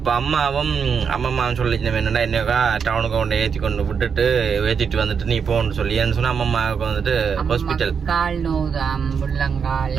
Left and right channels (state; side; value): quieter; left; 6.5 dB